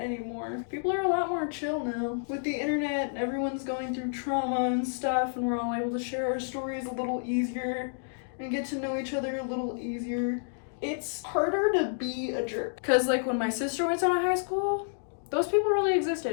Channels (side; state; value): right; silent; digital silence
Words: People are a lot more chill now. With the internet and everyone's going through trauma and stuff, and we're all able to share our stories a little easier and get to know each other a little easier. It's harder to be a jerk. Cause like when my sister went to high school, those people really